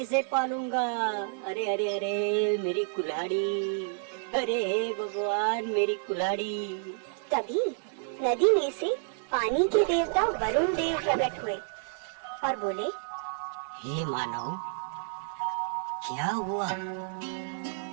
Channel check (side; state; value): left; silent; digital silence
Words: पालूंगा। अरे अरे अरे मेरी कुल्हाड़ी, अरे हे भगवान मेरी कुल्हाड़ी। तभी नदी में से पानी के देवता वरुण देव प्रकट हुए और बोले, हे मानव, क्या हुआ,